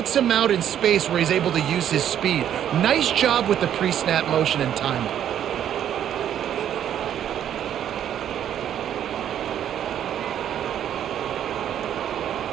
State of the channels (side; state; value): left; quieter; 10.2 dB